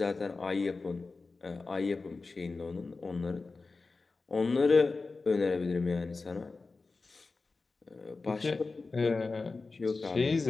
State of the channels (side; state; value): right; quieter; 3.9 dB